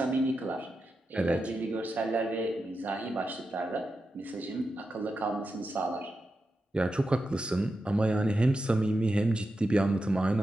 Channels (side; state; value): both; normal; correlation 0.89